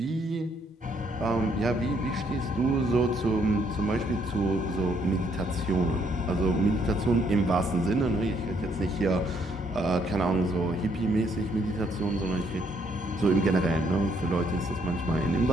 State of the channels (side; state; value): both; normal; correlation 0.70